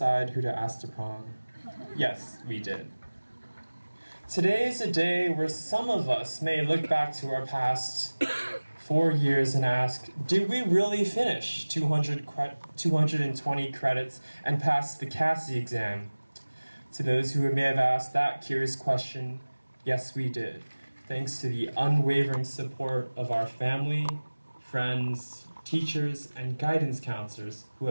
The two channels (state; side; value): inverted; both; correlation -1.00